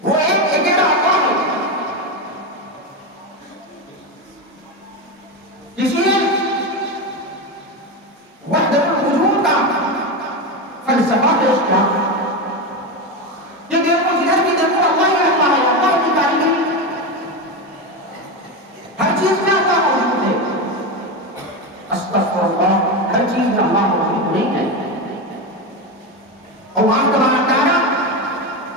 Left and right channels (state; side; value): normal; both; correlation 0.15